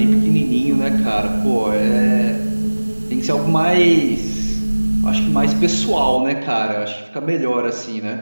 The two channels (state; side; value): inverted; both; correlation -1.00